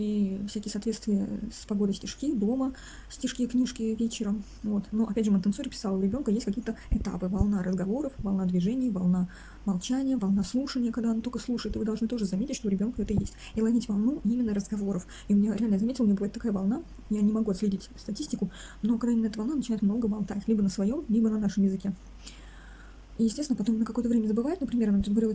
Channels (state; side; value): identical; both; correlation 1.00